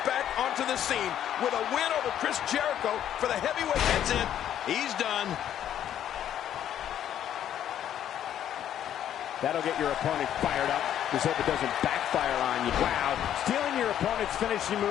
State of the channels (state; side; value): quieter; right; 10.6 dB